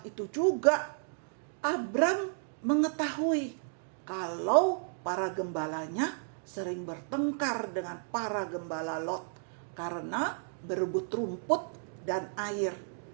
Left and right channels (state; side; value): silent; left; digital silence